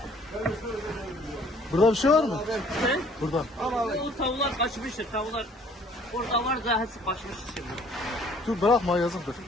Burada bir şey var mı? He? Burada. O tavuklar kaçmıştır. Tavuklar orada var da hepsi kaçmış şimdi. Dur bırakma yazıktır.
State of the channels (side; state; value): both; normal; correlation 0.57